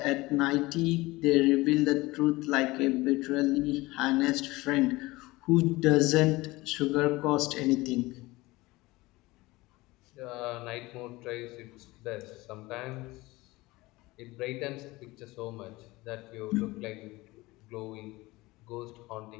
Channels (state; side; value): quieter; right; 20.8 dB